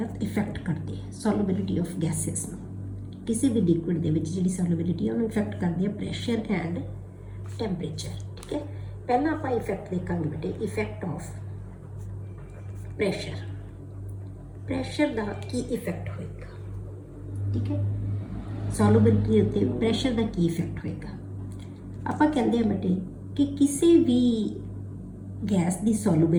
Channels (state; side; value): identical; both; correlation 1.00